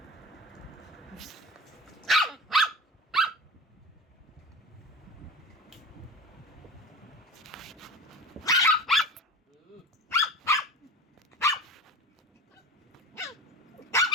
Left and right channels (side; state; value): both; normal; correlation 0.33